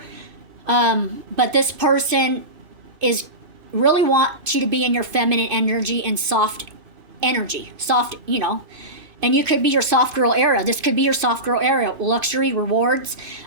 But this person is really wants you to be in your feminine energy and soft energy. Soft, you know. And you could be your soft girl era. This could be your soft girl era. Luxury, rewards,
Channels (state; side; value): late; left; 2.5 ms